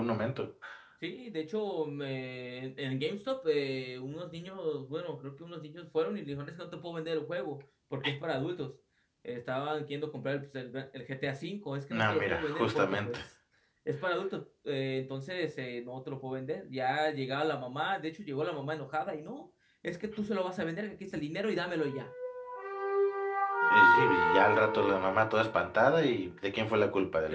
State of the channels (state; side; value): identical; both; correlation 1.00